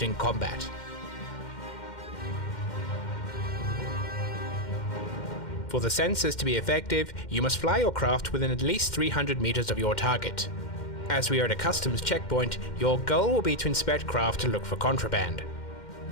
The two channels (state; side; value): late; right; 2.1 ms